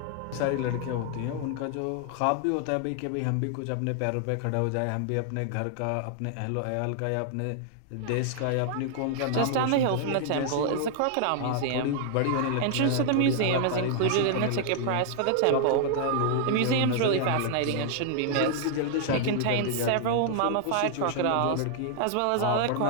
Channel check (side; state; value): both; different; correlation 0.00